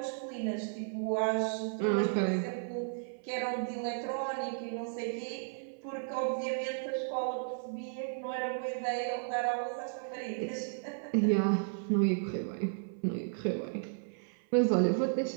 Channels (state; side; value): silent; left; 55 dB below the other